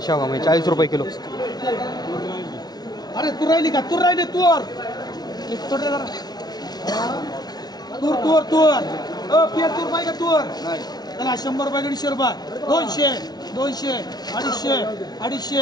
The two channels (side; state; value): right; late; 0.19 ms